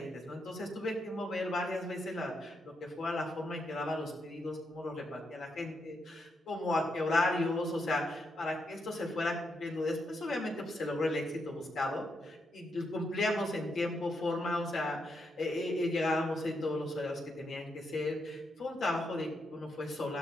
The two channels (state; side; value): normal; both; correlation 0.81